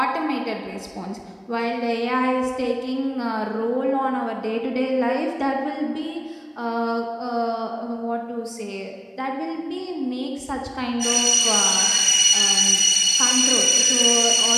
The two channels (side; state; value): both; identical; correlation 1.00